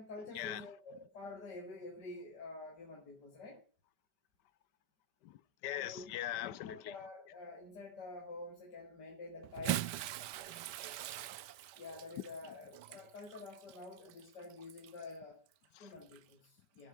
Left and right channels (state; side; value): late; right; 5.1 ms